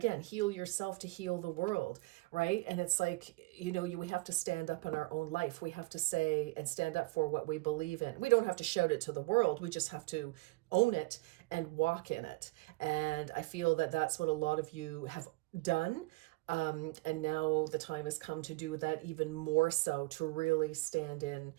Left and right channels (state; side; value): quieter; left; 23.7 dB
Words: heal yourself to heal the world, right? And it's like, we have to stand up in our own life. We have to say and stand up for what we believe in. We don't have to shout it to the world. We just have to own it and walk in it. And I feel that that's what a lot of you have done. And now the time has come to do that even more so, to really stand in